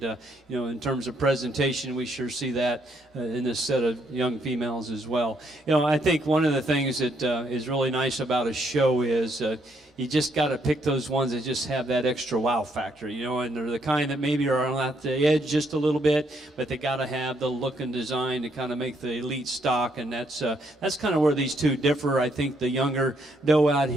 in terms of presentation, we sure see that in this set of young females as well. I think one of the things that is really nice about a show is you just got to pick those ones that just have that extra wow factor, and they're the kind that maybe are on the edge just a little bit, but they got to have the look and design to kind of make the elite stock, and that's kind of where these two differ. I think the younger doe out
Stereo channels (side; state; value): both; normal; correlation 0.73